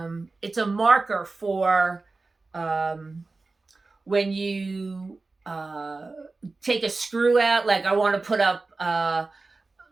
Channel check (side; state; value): left; quieter; 3.6 dB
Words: a marker for when you take a screw out. Like I want to put up